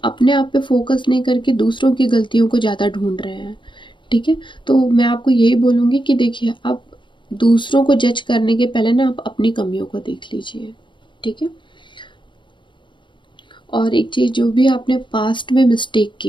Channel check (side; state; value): right; late; 0.23 ms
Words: अपने आप पे फोकस नहीं करके दूसरों की गलतियों को ज़्यादा ढूंढ रहे हैं, ठीक है। तो मैं आपको यही बोलूँगी कि देखिए, आप दूसरों को जज करने के पहले ना आप अपनी कमियों को देख लीजिए, ठीक है। और एक चीज़, जो भी आपने पास्ट में मिस्टेक